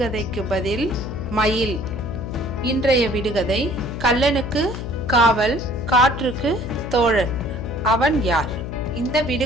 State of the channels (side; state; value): left; noise; hum, 7 dB below the sound